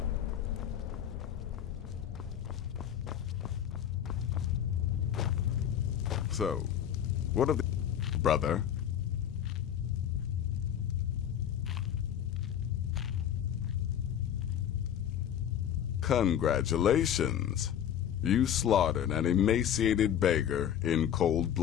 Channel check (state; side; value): quieter; right; 9.7 dB